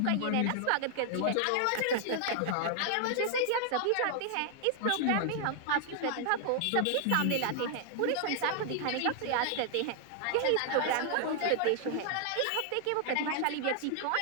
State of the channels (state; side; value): different; both; correlation 0.00